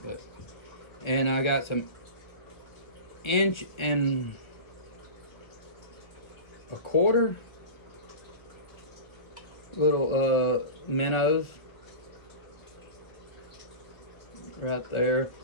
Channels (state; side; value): late; right; 1.4 ms